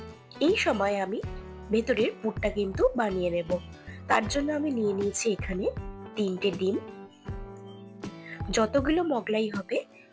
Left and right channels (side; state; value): both; identical; correlation 1.00